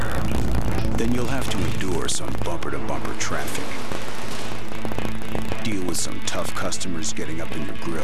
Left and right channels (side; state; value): both; identical; correlation 1.00